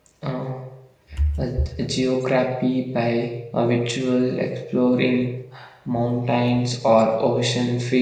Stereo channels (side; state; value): both; identical; correlation 1.00